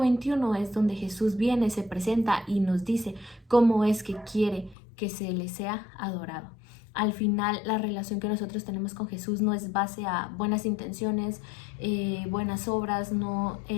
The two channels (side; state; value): right; drops out; at 4.8 s